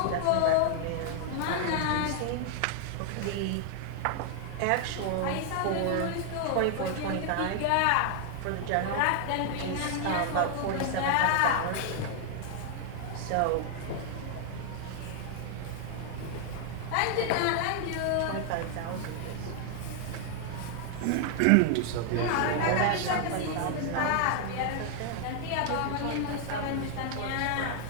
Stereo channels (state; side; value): different; both; correlation 0.00